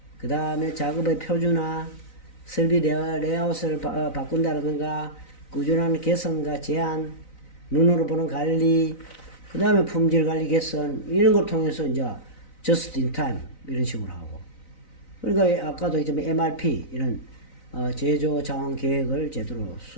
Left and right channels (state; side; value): late; right; 3.9 ms